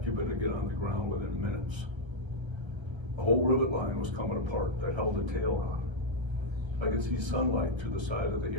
you better get on the ground within minutes. The whole rivet line was coming apart that held the tail on. I could see sunlight through the side of the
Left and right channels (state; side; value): late; left; 1.3 ms